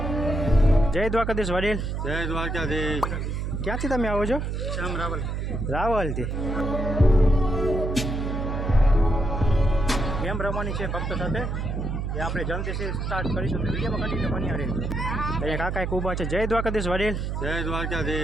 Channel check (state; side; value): noise; right; hum, 2 dB below the sound